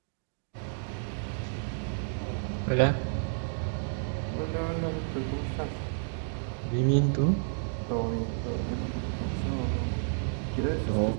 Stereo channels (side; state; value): left; silent; digital silence